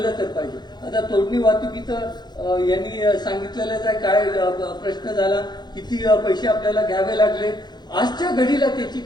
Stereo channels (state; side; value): late; right; 0.21 ms